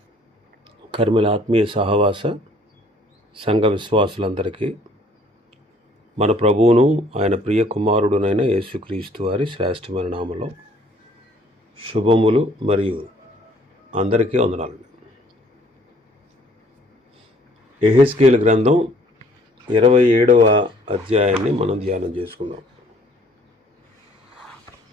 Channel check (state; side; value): normal; both; correlation 0.59